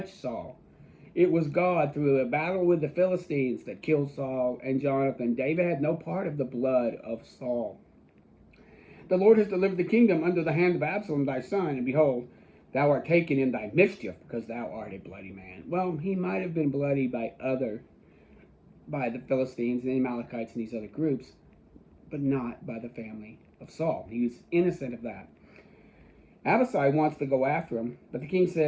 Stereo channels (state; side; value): identical; both; correlation 1.00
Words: Saul. It was God through a battle with the Philistines that killed Saul and Jonathan. David had no part of the blood of Saul. The Lord has delivered the kingdom under the hand of Absalom thy son, and behold, thou art taken in thy mischief, because thou art a bloody man. Well, he might have been bloody by the Philistines and the Amalekites and these other groups, but not by the family of Saul. He was innocent of that. Abishai wants to go after him, but the king